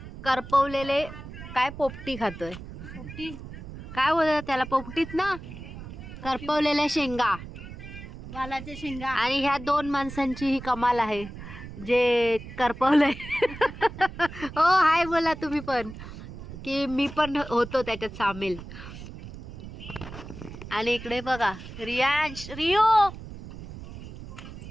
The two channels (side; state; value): right; noise; rumble, 12 dB below the sound